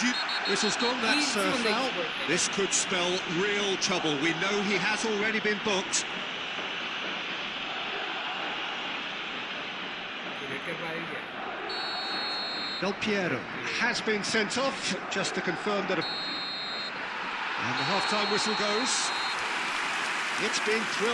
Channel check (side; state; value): both; identical; correlation 1.00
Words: due... Whistle's gone, that's foul. This could spell real trouble. We know he has already been booked. Del Piero has been sent off, just to confirm that... And the half-time whistle goes. It's been